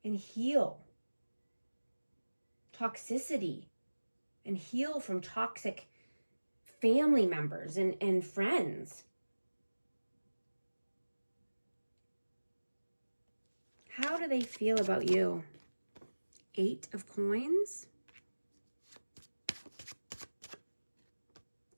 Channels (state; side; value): inverted; both; correlation -1.00